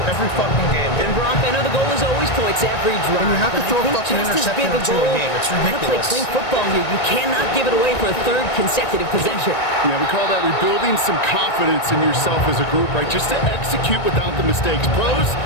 Every fucking game. And Brock, I know the goal is always points every drive. And you have to but throw I a think fucking just as interception big or two a goal, game. It's you gotta play ridiculous. clean football here. You cannot give it away for a 3rd consecutive possession. Yeah, we call that rebuilding some confidence in yourself as a group, right? Just to execute without the mistakes. Pros,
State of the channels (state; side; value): late; right; 1.9 ms